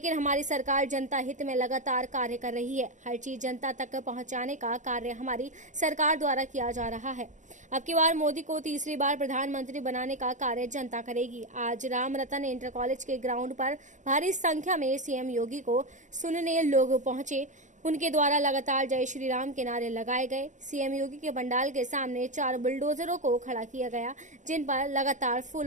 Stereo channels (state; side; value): late; left; 0.36 ms